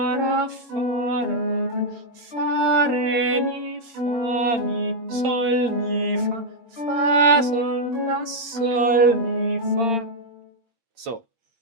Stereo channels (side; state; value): left; late; 8.7 ms